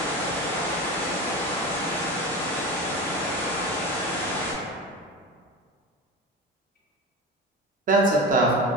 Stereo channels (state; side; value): normal; both; correlation 0.27